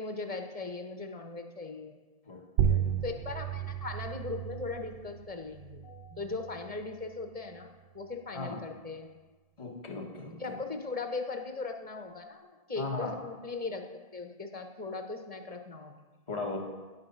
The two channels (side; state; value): left; late; 1.7 ms